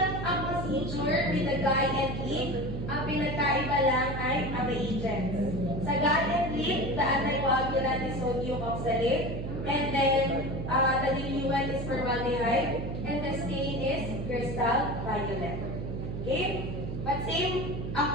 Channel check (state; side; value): noise; right; hum, 5 dB below the sound